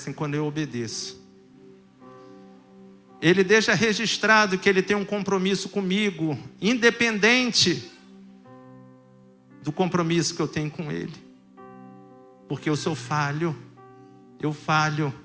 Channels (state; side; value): identical; both; correlation 1.00